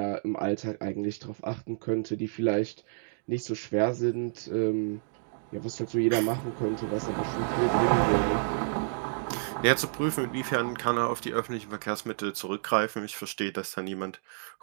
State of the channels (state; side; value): silent; left; digital silence